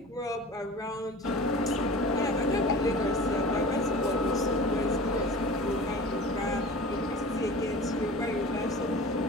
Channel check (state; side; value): normal; both; correlation 0.38